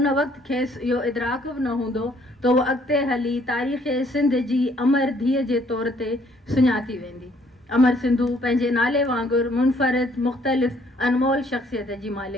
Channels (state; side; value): normal; both; correlation 0.64